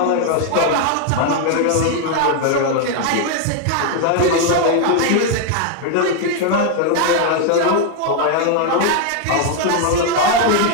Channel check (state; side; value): different; both; correlation 0.00